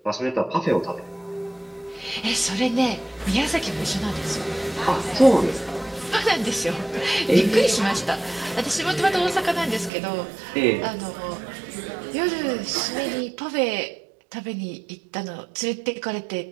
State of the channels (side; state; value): left; drops out; at 9.9 s